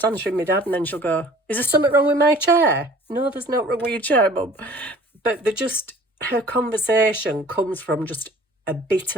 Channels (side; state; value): both; normal; correlation 0.49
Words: answering my dad, and then she'll go, is there something wrong with my chair? No, there's no wrong with your chair, Mum. But her conversation comes from just a bit